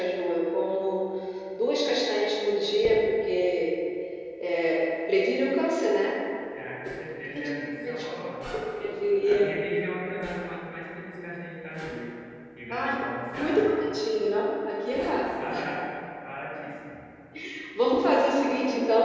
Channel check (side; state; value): both; identical; correlation 1.00